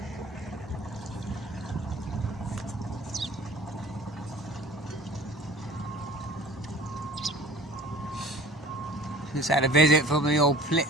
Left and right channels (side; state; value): both; normal; correlation 0.46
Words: Just had a visit from the old